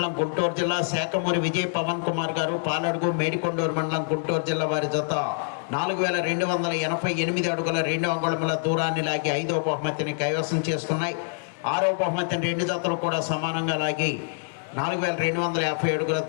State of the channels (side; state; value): right; silent; digital silence